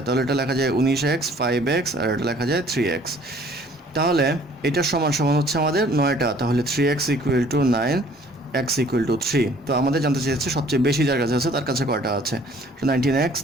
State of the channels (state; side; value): normal; both; correlation 0.56